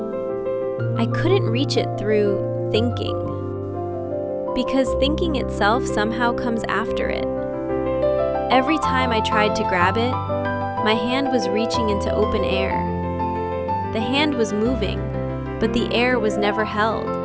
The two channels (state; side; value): identical; both; correlation 1.00